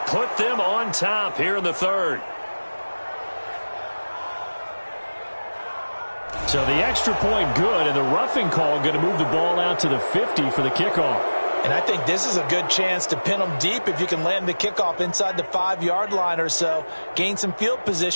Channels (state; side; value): inverted; both; correlation -1.00